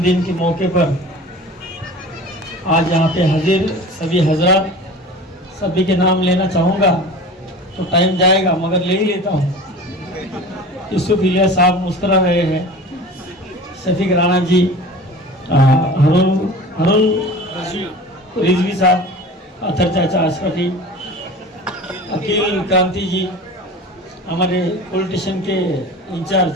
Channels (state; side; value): normal; both; correlation 0.38